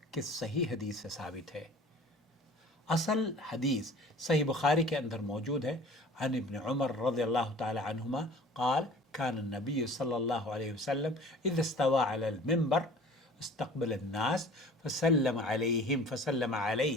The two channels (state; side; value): normal; both; correlation 0.46